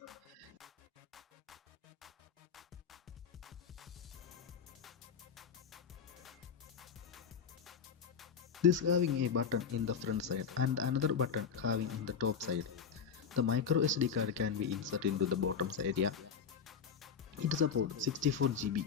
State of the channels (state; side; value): quieter; right; 6.7 dB